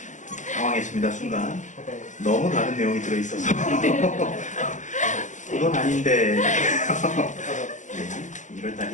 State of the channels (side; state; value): right; late; 0.36 ms